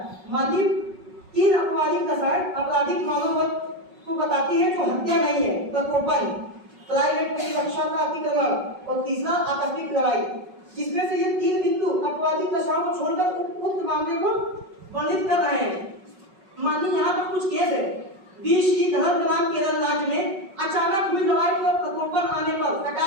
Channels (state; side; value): late; left; 5.4 ms